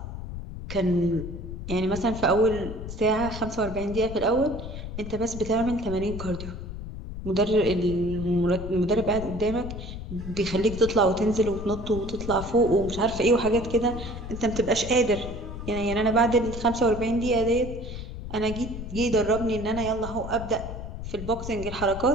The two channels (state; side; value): noise; left; rumble, 8 dB below the sound